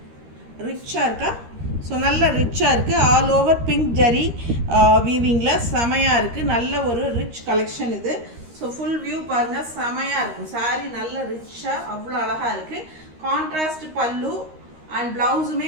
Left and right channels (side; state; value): left; late; 13 ms